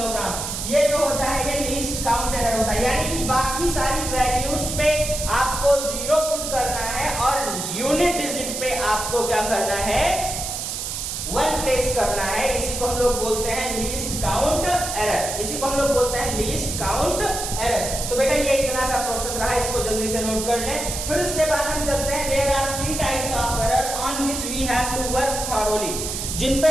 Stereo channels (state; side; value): noise; right; hiss, 4 dB below the sound